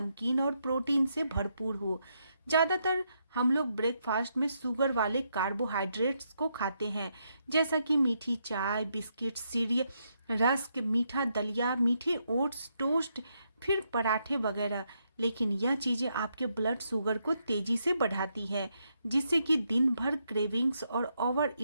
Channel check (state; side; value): inverted; both; correlation -0.79